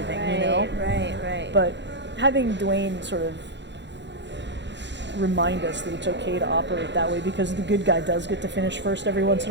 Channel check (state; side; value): late; left; 0.52 ms